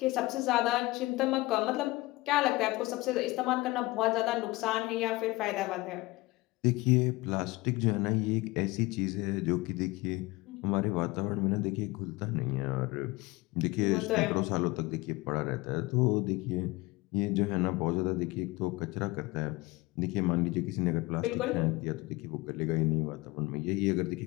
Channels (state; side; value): quieter; right; 21.3 dB